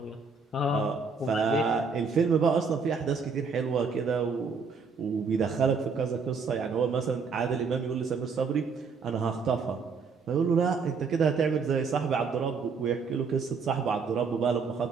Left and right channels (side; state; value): left; quieter; 5.0 dB